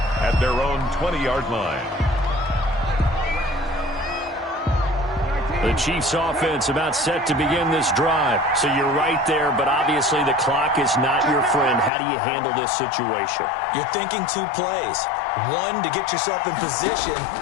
at their own 20-yard line. The Chiefs offense about set to begin this drive. So you're right there, but obviously the clock is not your friend. How do you handle this situation? You're thinking 2 plays. One, to get yourself in position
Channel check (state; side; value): drops out; right; at 11.9 s